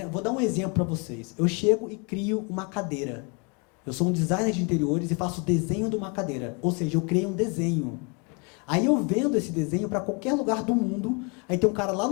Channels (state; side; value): quieter; right; 33.0 dB